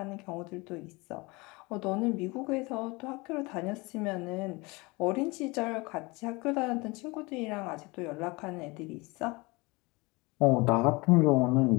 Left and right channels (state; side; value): quieter; right; 25.1 dB